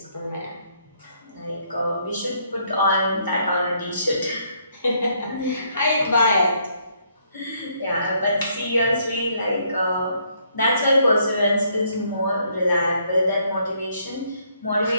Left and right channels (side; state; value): both; inverted; correlation -0.70